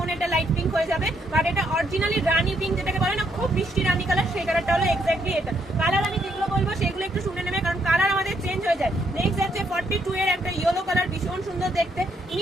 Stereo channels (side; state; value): both; normal; correlation 0.74